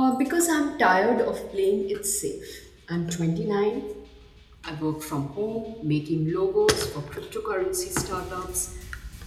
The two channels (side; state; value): both; identical; correlation 1.00